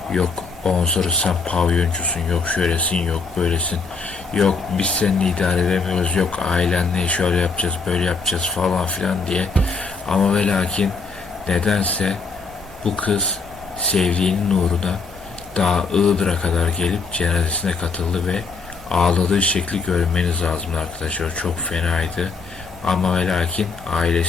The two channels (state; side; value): quieter; right; 4.5 dB